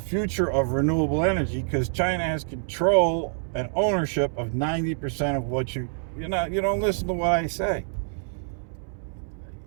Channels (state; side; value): silent; left; 61 dB below the other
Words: of renewable energy because China has control and ownership of 90% of what you don't listen to what I say.